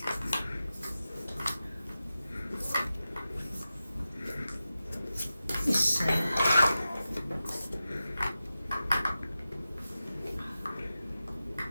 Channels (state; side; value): inverted; both; correlation -0.93